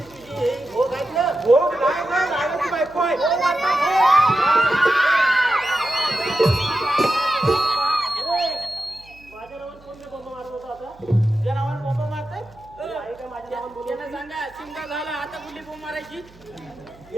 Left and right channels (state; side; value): noise; right; hum, 26 dB below the sound